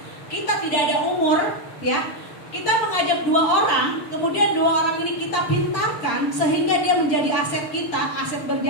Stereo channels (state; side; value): late; right; 6.8 ms